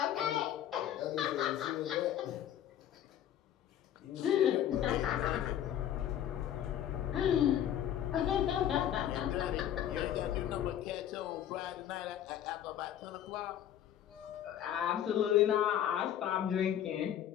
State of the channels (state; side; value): quieter; right; 10.8 dB